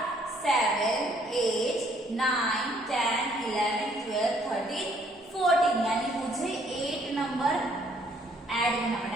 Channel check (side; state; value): both; normal; correlation 0.65